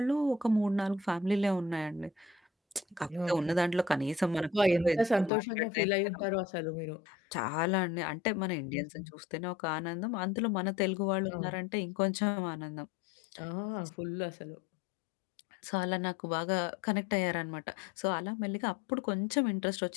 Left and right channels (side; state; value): right; drops out; at 5.3 s